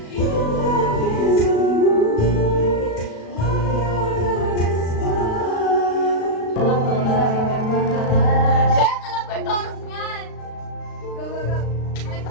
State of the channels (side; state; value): right; late; 36 ms